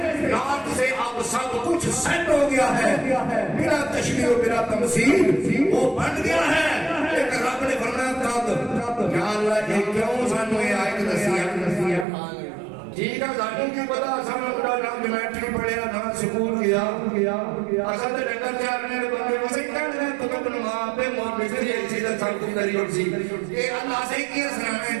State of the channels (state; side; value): drops out; left; at 12.1 s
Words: نارتھ سے اب سب کچھ سیٹ ہو گیا ہے، بلا تشبیہ و بلا تمثیل وہ بن گیا ہے۔ لیکن رب نے فرمایا تب یا اللہ یہ کیوں سانوں یہ آیت دسی ہے؟ ٹھیک ہے ذاتوں کی پتا سامنے بڑا نام جمیٹری پڑھیا نہ سکول گیا اصل تے ڈنگر چارنے دے بندے وسے کہنے تو کبن ماں پہ موت بچری ایسی تے سب کچھ دری سی یہ اللہ سے کی سرانے